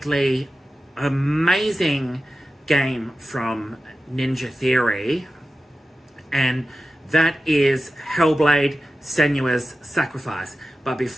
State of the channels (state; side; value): normal; both; correlation 0.93